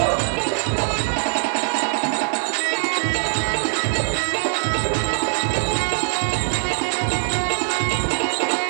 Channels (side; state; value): left; silent; digital silence